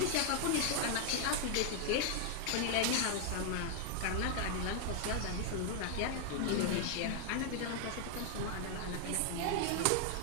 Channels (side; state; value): both; different; correlation 0.00